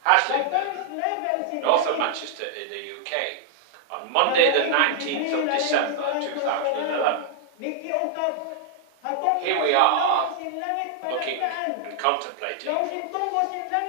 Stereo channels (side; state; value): both; different; correlation -0.01